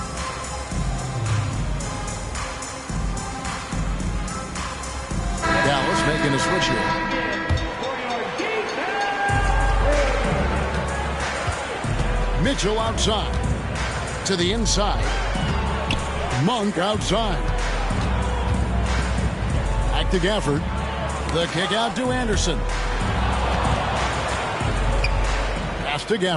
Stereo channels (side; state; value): both; identical; correlation 1.00